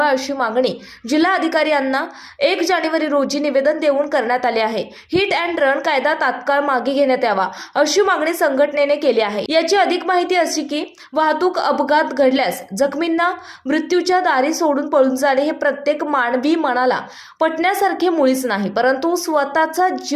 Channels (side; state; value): both; identical; correlation 1.00